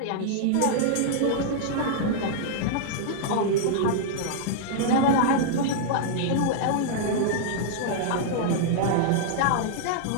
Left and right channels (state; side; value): different; both; correlation -0.01